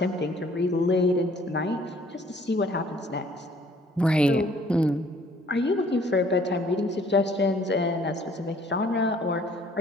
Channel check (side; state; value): both; normal; correlation 0.59